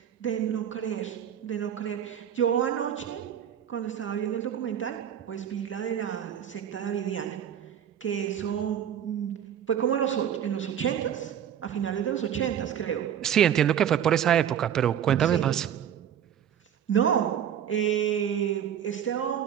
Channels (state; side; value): quieter; left; 9.5 dB